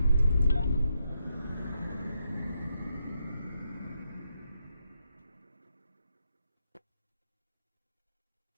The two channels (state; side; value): inverted; both; correlation -0.81